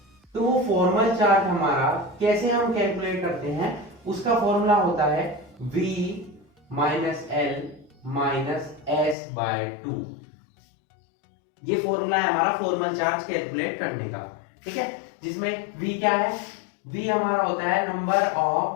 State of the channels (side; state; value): right; drops out; at 9.2 s